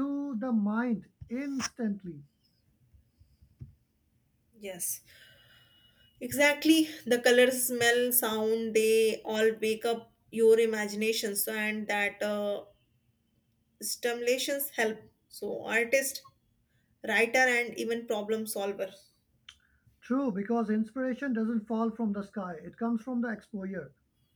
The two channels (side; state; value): both; identical; correlation 1.00